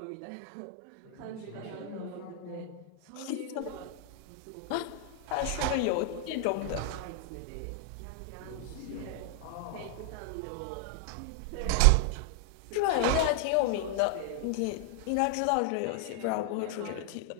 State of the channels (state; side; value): different; both; correlation 0.00